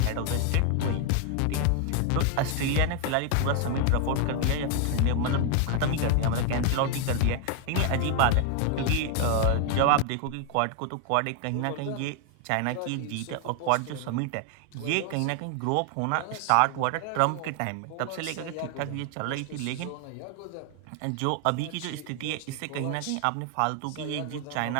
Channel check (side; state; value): both; different; correlation 0.00